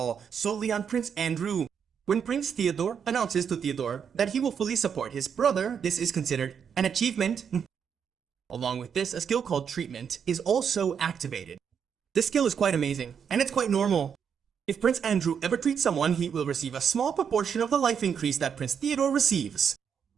solely on Prince Andrew. When Prince Theodore announces to Theodore that he will fully support his brother, this is considered an achievement. Along with this, a skill called Treatment is also activated. This skill is quite amazing, and it's quite normal. If Prince Andrew ever treats someone, he will receive a small proportion of the life increase that Prince Theodore receives.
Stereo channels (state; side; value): quieter; left; 7.3 dB